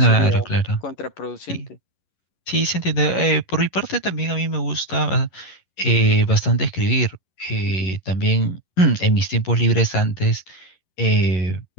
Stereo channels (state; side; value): late; right; 11 ms